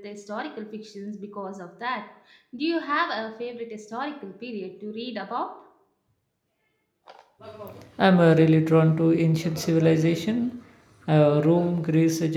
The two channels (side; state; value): both; identical; correlation 1.00